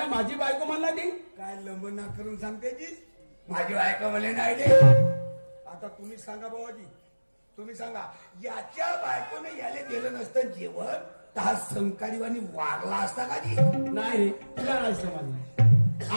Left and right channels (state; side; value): inverted; both; correlation -1.00